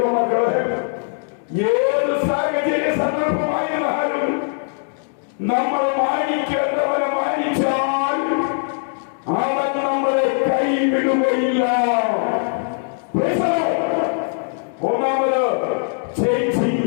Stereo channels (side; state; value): right; silent; digital silence